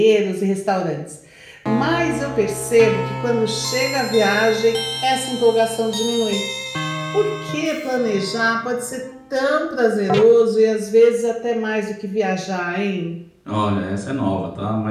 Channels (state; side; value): identical; both; correlation 1.00